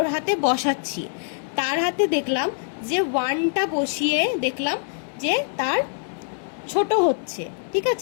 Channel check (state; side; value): silent; right; digital silence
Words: হাতে বসাচ্ছি, তার হাতে দেখলাম যে 1টা বসিয়ে দেখলাম যে তার ছোট হচ্ছে, ঠিক